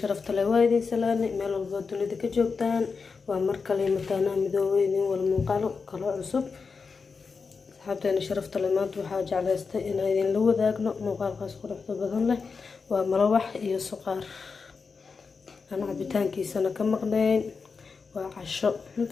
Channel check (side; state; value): right; quieter; 5.0 dB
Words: لوايدي سلامي ميل البودون إذا كجوبتان ومركلي مكانا مدوين والمنقلو كلو عصب أصحابتنا شرفت لمات وحاجة على إن هذين لو ذاقنا مقال قاس قرحة بدن له ومروح إيو سقار أنا عبتان كيسانا كمقنين وعشو